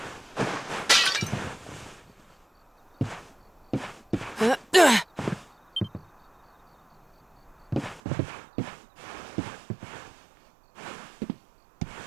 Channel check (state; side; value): drops out; left; at 8.0 s